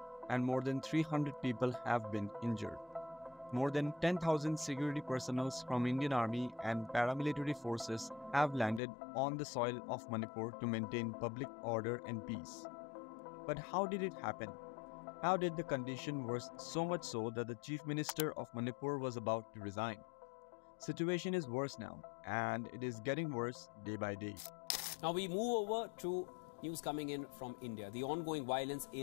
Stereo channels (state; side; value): drops out; right; at 8.8 s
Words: and more than 300 people have been injured. More than 10,000 security personnel from Indian Army and paramilitary forces have landed on the soil of Manipur to maintain public order and peace. But how did it happen? How did the condition worsen so much so that the Chief Minister of Manipur was about to resign? Situation is worse now, and it is getting worse day by day. Now we move over to news coming in from India. The ongoing violence